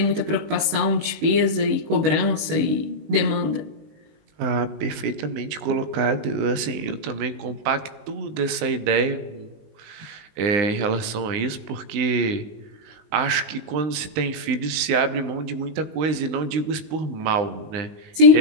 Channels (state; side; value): late; left; 19 ms